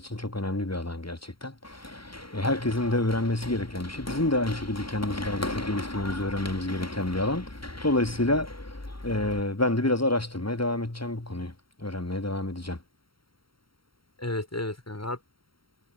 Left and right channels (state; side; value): late; right; 0.74 ms